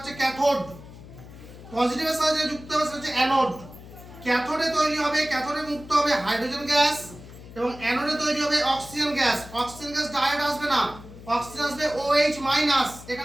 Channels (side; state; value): left; noise; hum, 17 dB below the sound